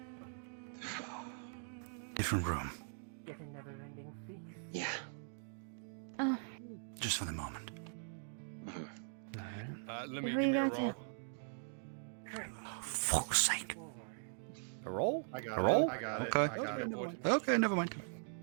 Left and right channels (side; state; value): left; silent; digital silence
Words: Different room. with a never-ending feast. Yeah. Oh. Just for the moment. Let me Who give you me a got roll. to? Fuck's sake. A roll? I got A roll? it. I got Okay. it. I got it. Okay, never mind.